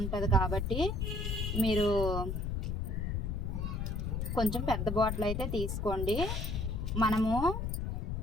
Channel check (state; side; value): noise; left; rumble, 1 dB below the sound